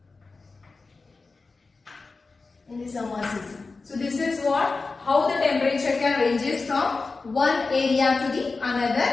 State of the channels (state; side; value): quieter; right; 4.0 dB